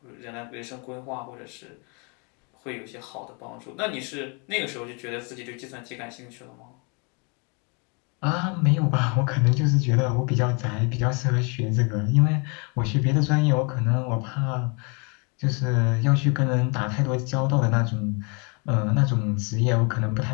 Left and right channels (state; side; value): quieter; right; 33.5 dB